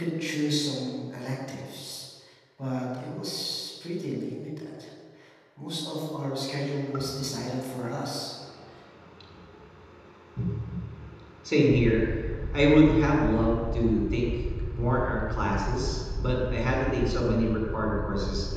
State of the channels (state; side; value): identical; both; correlation 1.00